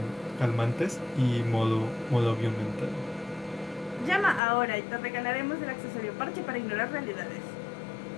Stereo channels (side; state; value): right; drops out; at 4.4 s